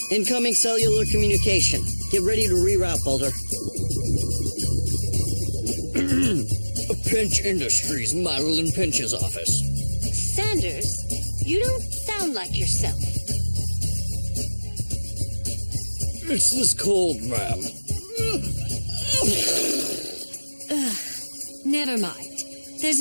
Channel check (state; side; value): inverted; both; correlation -1.00